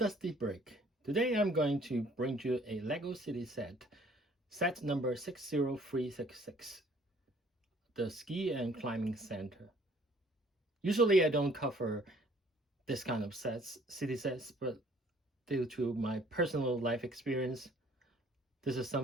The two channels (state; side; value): normal; both; correlation 0.58